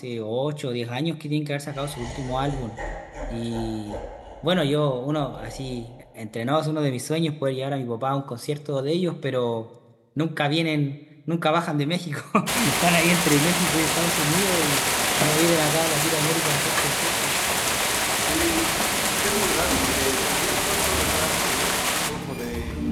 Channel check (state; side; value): identical; both; correlation 1.00